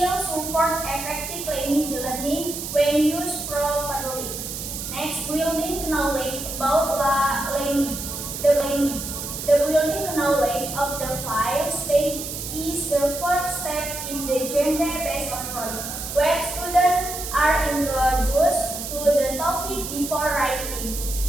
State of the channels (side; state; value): right; noise; hiss, 7 dB below the sound